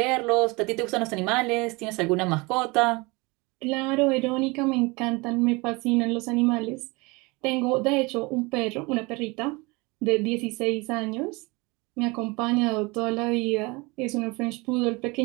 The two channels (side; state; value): left; quieter; 25.7 dB